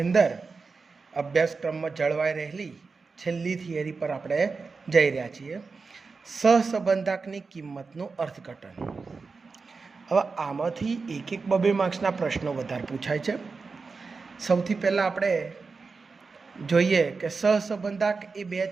અંદર અભ્યાસક્રમમાં જળવાઈ રહેલી છેલ્લી થિયરી પર આપણે જઈ રહ્યા છીએ. સહસંબંધકની કિંમતનું અર્થઘટન. હવે આમાંથી એક બબે માર્ક્સના પ્રશ્નો વધારે પૂછાય છે. સૌથી પહેલાં આપણે જોઈએ કે સહસંબંધક એ બે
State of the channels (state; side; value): quieter; left; 4.5 dB